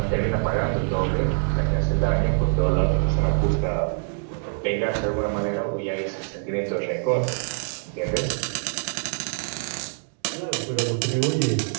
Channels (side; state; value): left; silent; 55 dB below the other